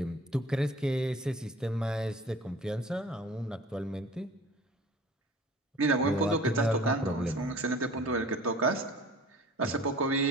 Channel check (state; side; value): normal; both; correlation 0.45